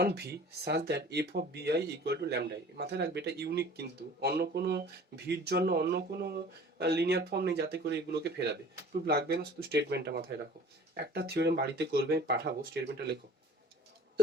v such that f of bi equal to lambda i। মাথায় রাখবে এটা unique, কিন্তু অন্য কোনো ভির জন্য অন্য কোনো লিনিয়ার ফর্ম নেই যাতে করে এগুলোকে ফেরাবে। প্রুফ লাগবে না, শুধু স্টেটমেন্টটা মাথায় রাখো। একটা থিওরেম বাড়িতে করবে, পাঠাবো, স্টেটমেন্টটা লেখো।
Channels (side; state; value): both; normal; correlation 0.46